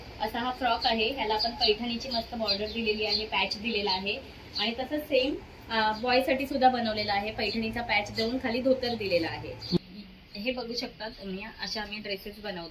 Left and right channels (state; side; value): identical; both; correlation 1.00